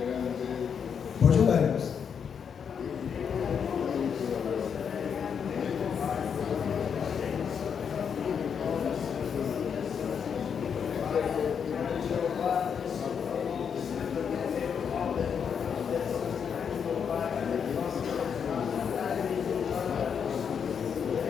Pode orar, irmãos.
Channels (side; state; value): right; quieter; 7.1 dB